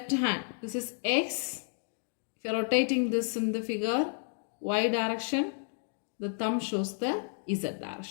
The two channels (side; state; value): right; silent; digital silence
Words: hand. This is x. If you are rotating this in the figure, y direction, the thumb shows the z